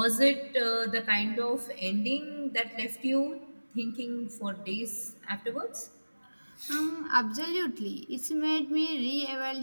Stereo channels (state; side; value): inverted; both; correlation -1.00